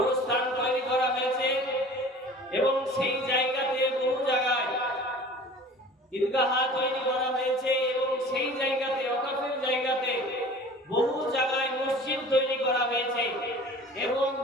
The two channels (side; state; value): both; normal; correlation 0.44